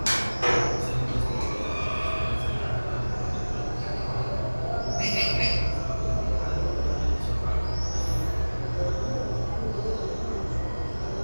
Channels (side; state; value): both; inverted; correlation -1.00